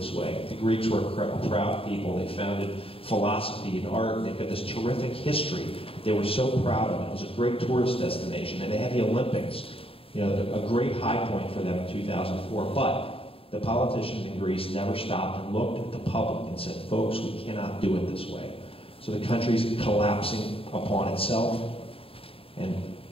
way. The Greeks were a proud people. They founded philosophy and art, and they've got this terrific history. They were so proud of it. It was a great tourist destination, and they had the Olympics, you know, a great high point for them in 2004. But the politicians in Greece never stopped and looked at the public and said, folks, we cannot do it this way. So the country's collapsing upon itself, and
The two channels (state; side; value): late; right; 0.27 ms